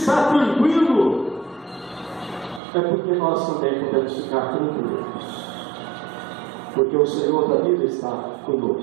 tranquilo, é porque nós também podemos ficar tranquilos. Porque o Senhor da vida está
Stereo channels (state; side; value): drops out; left; at 2.6 s